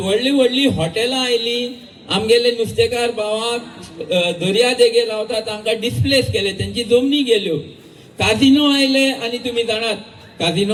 व्हडली व्हडली हॉटेलां आयलीं आमगेले नुस्तेकार भावाक दर्या देगेर रावता तांकां डिस्प्लेस केले तेंची जमनी गेल्यो काजिनो आयले आनी तुमी जाणात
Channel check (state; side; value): identical; both; correlation 1.00